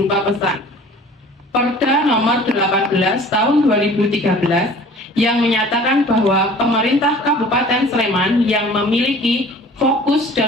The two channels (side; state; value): both; normal; correlation 0.47